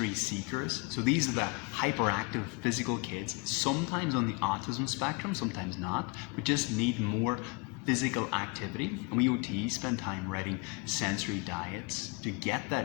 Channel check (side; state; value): right; quieter; 29.6 dB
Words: seekers, so these are the hyperactive physical kids, sometimes on the autism spectrum, sometimes not, but just need more physical activity. And we OTs spend time writing sensory diets to get